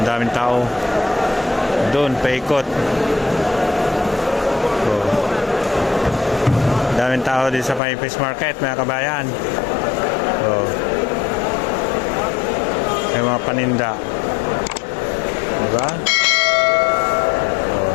daming tao. Doon, paikot. Oh. Daming tao dito sa may fish market mga kabayan. Oh. May mga paninda. Diba? Oh.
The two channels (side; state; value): right; drops out; at 7.8 s